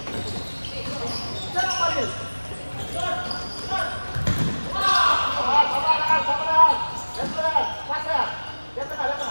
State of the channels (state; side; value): inverted; both; correlation -1.00